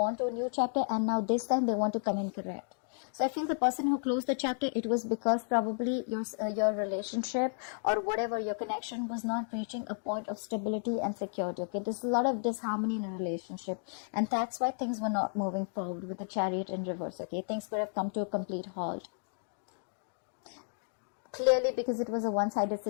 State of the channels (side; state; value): right; silent; digital silence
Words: to a new chapter, and now this time they want to come in correct. So I feel the person who closed the chapter, it was because probably your relationship or whatever your connection was not reaching a point of stability and security, okay? There's a lot of disharmony in a relationship, and that's why things were not moving forward with the Chariot in reverse, okay? Things could have come to a complete halt. Clearly because it was a one-sided